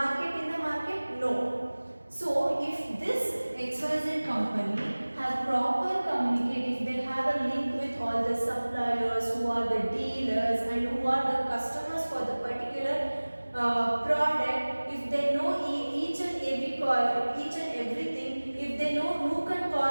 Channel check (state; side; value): inverted; both; correlation -1.00